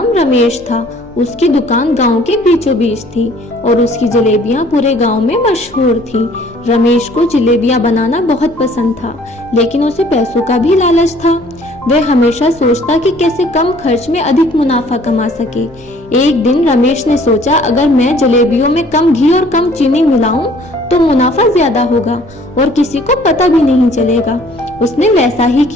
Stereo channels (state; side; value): noise; left; hum, 25 dB below the sound